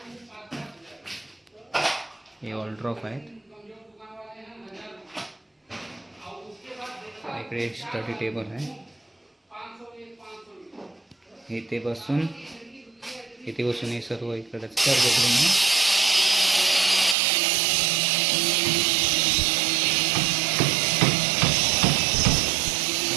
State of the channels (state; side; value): drops out; left; at 17.2 s